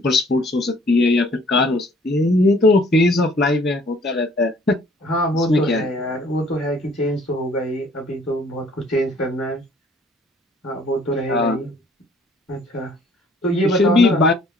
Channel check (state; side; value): normal; both; correlation 0.58